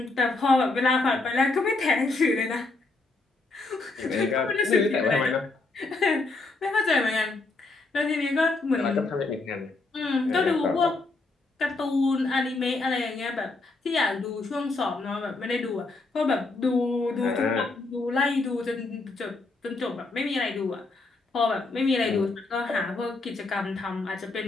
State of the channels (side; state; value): right; quieter; 3.4 dB